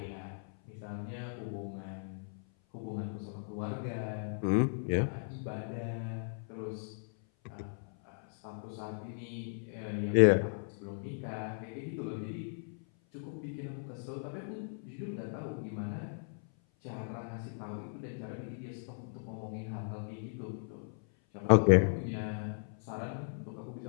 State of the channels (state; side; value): silent; right; 54 dB below the other